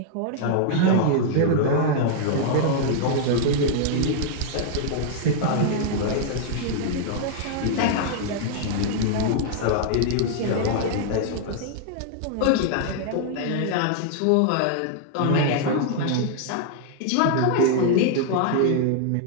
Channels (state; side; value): different; both; correlation -0.01